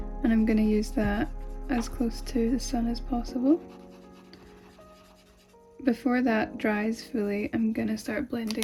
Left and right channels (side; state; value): both; identical; correlation 1.00